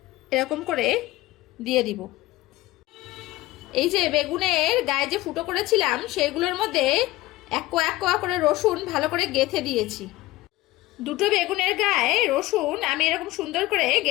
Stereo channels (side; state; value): right; quieter; 18.0 dB